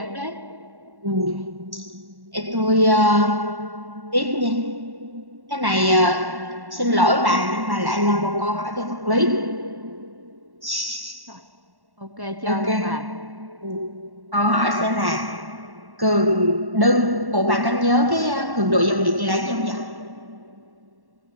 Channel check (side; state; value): left; late; 1.1 ms